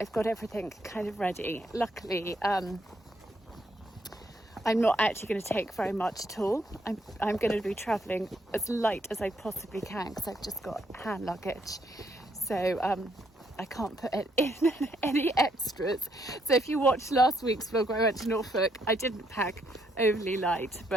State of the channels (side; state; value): both; normal; correlation 0.73